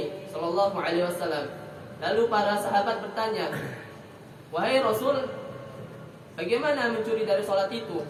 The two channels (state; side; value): identical; both; correlation 1.00